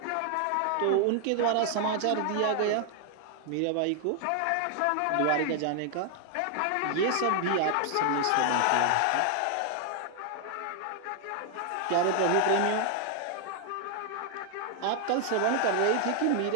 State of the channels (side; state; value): both; different; correlation 0.00